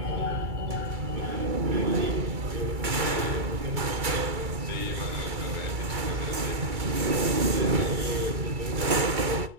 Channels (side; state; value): left; late; 2.3 ms